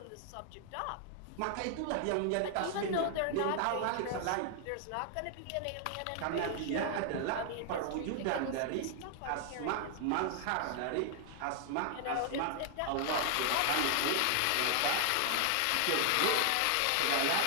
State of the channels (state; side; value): different; both; correlation 0.00